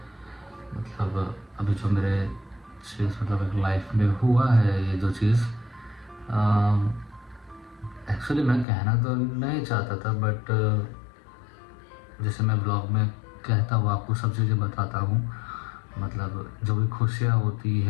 मतलब अभी जो मेरे चीज़ मतलब एक लाइफ में हुआ है, ये जो चीज़ एक्चुअली मैं कहना तो नहीं चाहता था, बट जैसे मैं ब्लॉग में कहता हूँ, आपको सब चीज़ें बताता हूँ। मतलब जो भी खुशियाँ होती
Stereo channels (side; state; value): right; drops out; at 8.7 s